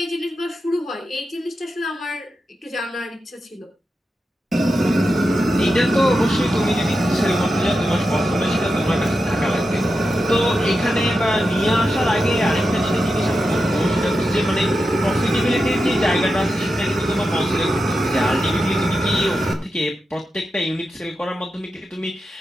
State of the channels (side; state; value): both; normal; correlation 0.89